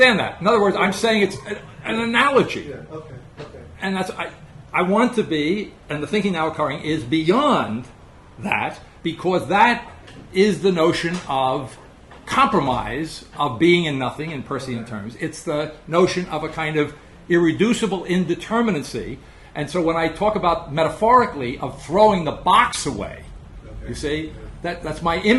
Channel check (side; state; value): both; identical; correlation 1.00